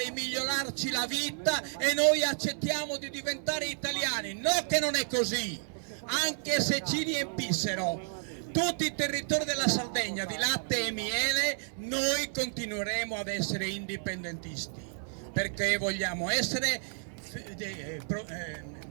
migliorarci la vita e noi accettiamo di diventare italiani. No, che non è così. Anche se ci riempissero tutti i territori della Sardegna di latte e miele, noi continueremo ad essere indipendentisti, perché vogliamo essere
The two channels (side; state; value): left; silent; 57 dB below the other